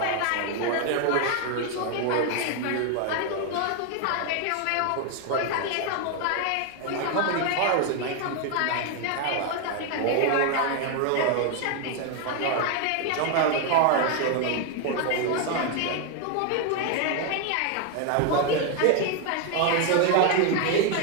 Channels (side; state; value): both; different; correlation 0.01